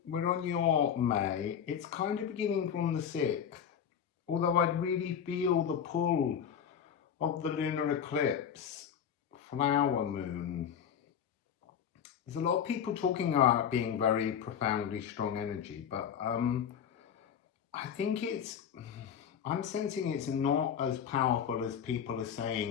we're on your May. It's kind of beginning from the 6th, although I'd really feel the pull of the lunar eclipse, flower moon. There's a lot of people talking about being very profoundly strong energy, but I think I'm sensing it's not as powerful as people are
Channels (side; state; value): right; quieter; 8.3 dB